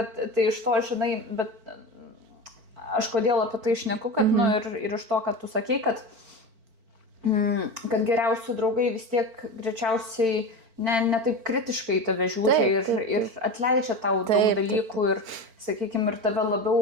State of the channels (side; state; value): left; late; 4.5 ms